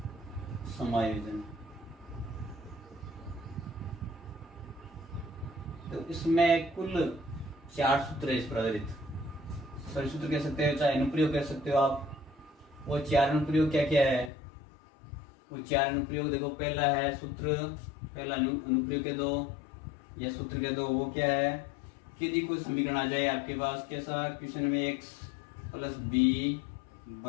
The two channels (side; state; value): right; drops out; at 14.3 s